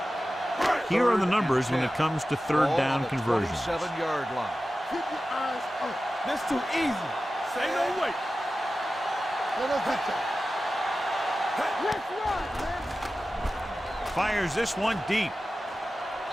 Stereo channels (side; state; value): both; normal; correlation 0.94